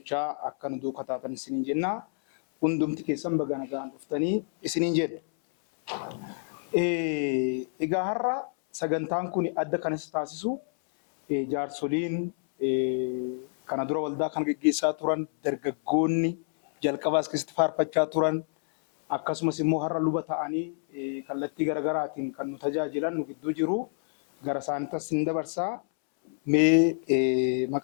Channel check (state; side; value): silent; right; 59 dB below the other